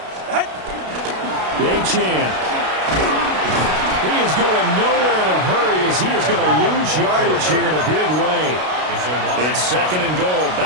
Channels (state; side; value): late; left; 33 ms